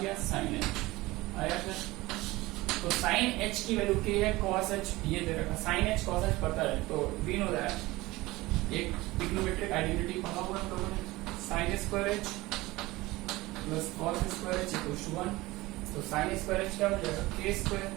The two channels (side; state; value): left; quieter; 19.9 dB